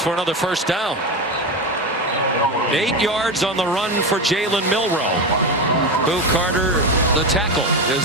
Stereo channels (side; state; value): both; normal; correlation 0.18